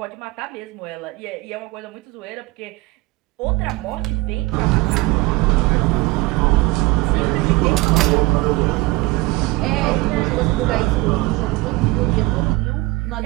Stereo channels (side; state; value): left; quieter; 21.5 dB